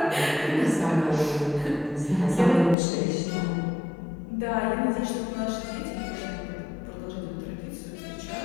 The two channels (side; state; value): right; drops out; at 2.8 s